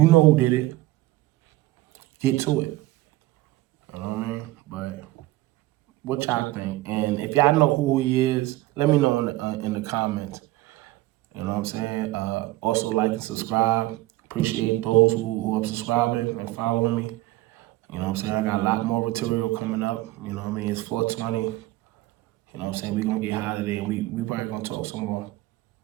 know who did it. Get to it. You know what I mean? But what y'all think? And if y'all know who he is, let me know in the comments. You know what I'm saying? Also like and subscribe. Appreciate those who are subscribing and following me. You know what I'm saying? I got a lot more material coming up. You know what I mean? It's 420. You know what I'm saying? We're going to get high today. We probably going to talk some more.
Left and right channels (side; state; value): left; quieter; 17.9 dB